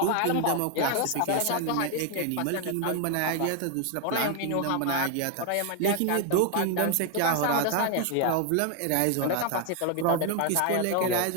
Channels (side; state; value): both; different; correlation 0.00